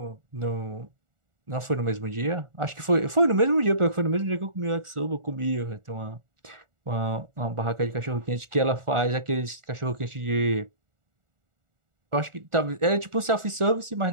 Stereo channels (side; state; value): left; late; 1.4 ms